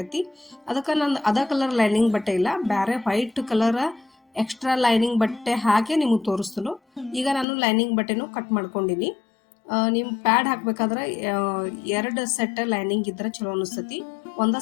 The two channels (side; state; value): right; drops out; at 7.5 s